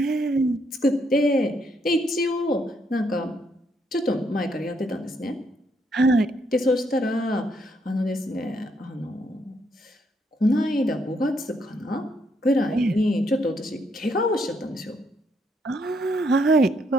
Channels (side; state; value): both; normal; correlation 0.74